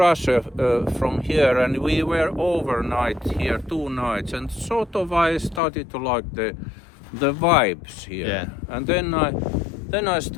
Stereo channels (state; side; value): drops out; right; at 5.6 s